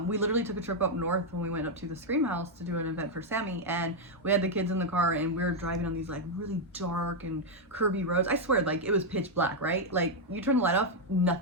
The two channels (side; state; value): both; normal; correlation 0.00